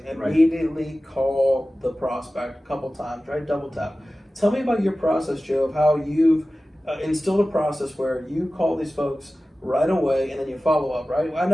immediately call the prospect a couple times, right? Double tap. Tell me about your process, Joe, of how you've instilled a process where you call these folks right away and then you follow up, right? I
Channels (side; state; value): both; normal; correlation 0.96